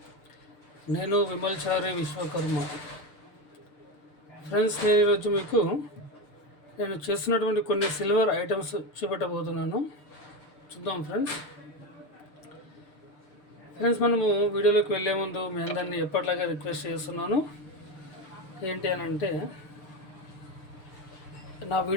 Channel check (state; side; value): late; right; 6.7 ms